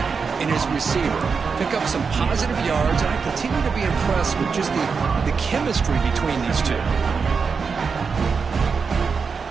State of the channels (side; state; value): left; quieter; 5.4 dB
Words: and his receiver. Pick up some positive yards, and I continue to be impressed with just the chemistry between these two.